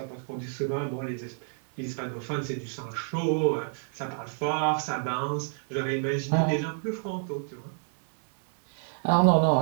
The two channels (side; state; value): left; silent; digital silence